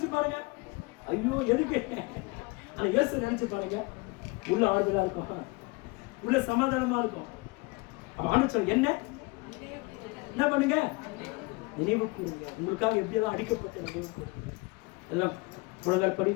பாருங்க, ஐயோ எதுக்கு. ஆனா இயேசு நினைச்சு பாருங்க, உள்ள ஆறுதலா இருக்கும், உள்ள சமாதானமா இருக்கும். அப்ப என்ன பண்ணுங்க? நினைவு கூறுங்க. உங்களுக்காக எப்படியெல்லாம் அடிக்கப்பட்ட நினைவு கூறுங்க. எல்லாம் புலங்கள்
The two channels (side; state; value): right; quieter; 25.6 dB